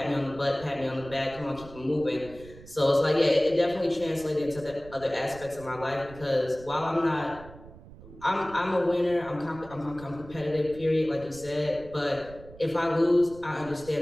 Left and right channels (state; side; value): noise; right; rumble, 18 dB below the sound